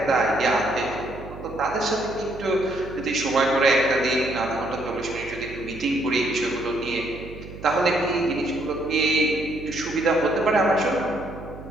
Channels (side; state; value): right; noise; hum, 14 dB below the sound